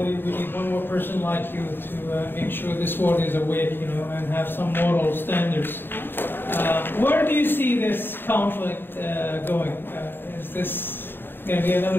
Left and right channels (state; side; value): late; right; 0.099 ms